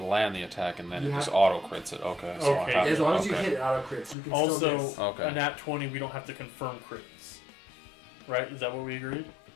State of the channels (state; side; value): drops out; right; at 4.2 s